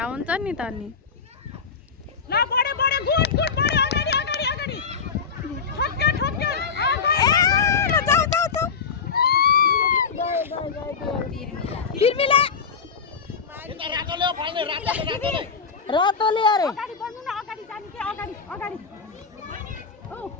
हुन्छ नि त नि ल बढ्यो बढ्यो गुड गुड बढ्यो अगाडि अगाडि अगाडि ठक्क्यो ठक्क्यो पिर्मिला रातोले अरे अगाडि बढ्नु न अगाडि जानु के अगाडि अगाडि ओ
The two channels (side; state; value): right; quieter; 5.7 dB